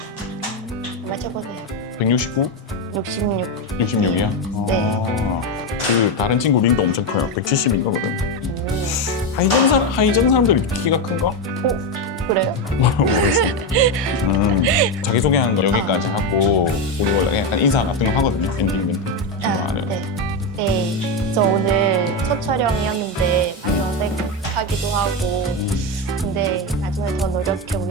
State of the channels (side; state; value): both; normal; correlation 0.11